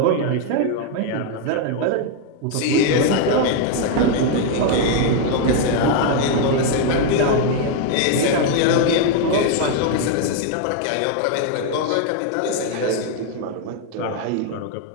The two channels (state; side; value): different; both; correlation 0.00